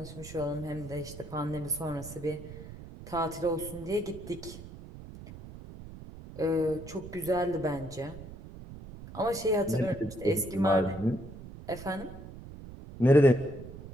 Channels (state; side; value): noise; right; rumble, 14 dB below the sound